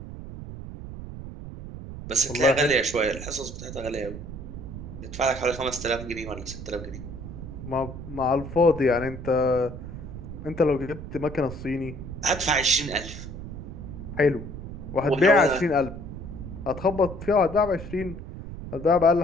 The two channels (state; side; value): noise; right; rumble, 10 dB below the sound